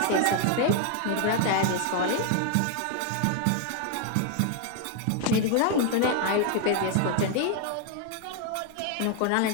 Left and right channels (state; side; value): different; both; correlation 0.00